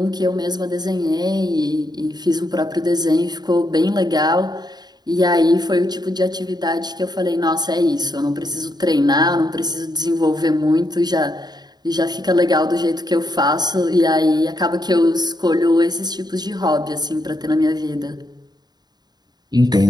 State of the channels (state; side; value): late; left; 0.20 ms